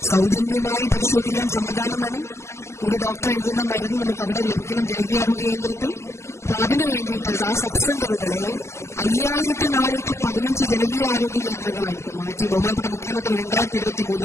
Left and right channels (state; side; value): late; right; 0.13 ms